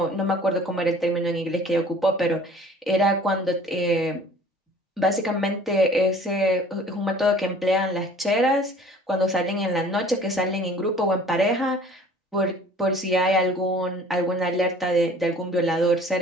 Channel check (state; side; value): normal; both; correlation 0.50